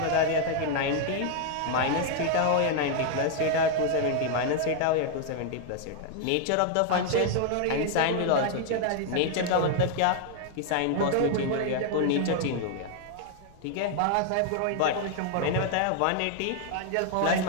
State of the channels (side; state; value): both; different; correlation 0.00